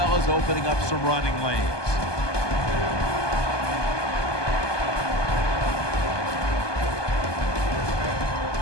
as opening up some running lanes.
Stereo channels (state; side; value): late; right; 1.2 ms